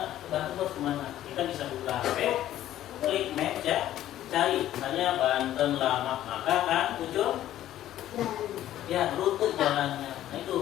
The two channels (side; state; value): right; quieter; 12.8 dB